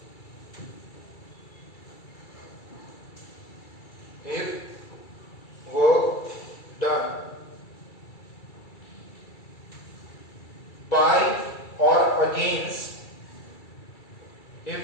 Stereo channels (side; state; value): right; late; 2.3 ms